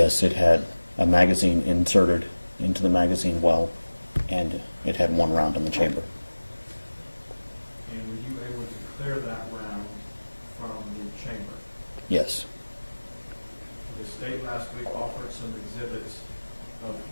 it had a magazine inserted into the magazine well, and it had one round in the chamber. And were you able to clear that round from the chamber? Yes. The state last week offered some exhibits of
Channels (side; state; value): both; inverted; correlation -1.00